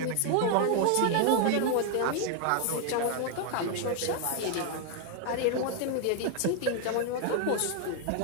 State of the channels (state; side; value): different; both; correlation 0.00